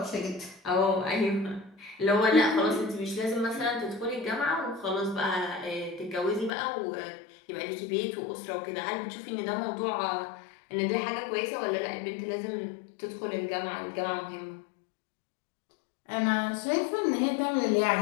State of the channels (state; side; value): drops out; right; at 6.5 s